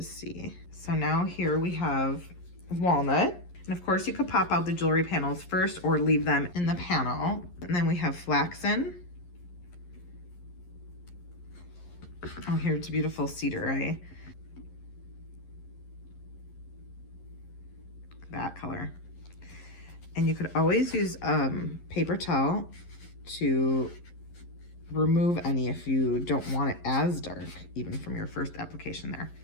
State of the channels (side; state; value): right; late; 11 ms